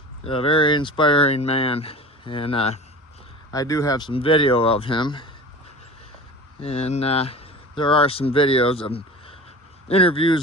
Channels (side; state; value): both; normal; correlation 0.37